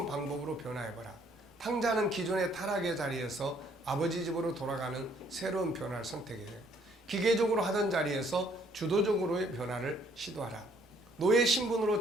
방법으로 변화해봐라. 탕자는 기존의 타락의 자리에서 아버지 집으로 돌아가는 새로운 변화를 선택해요. 기계적으로 하던 자리에서 주도적으로의 변화를 시도하라. 노예 신분으로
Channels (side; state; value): both; normal; correlation 0.64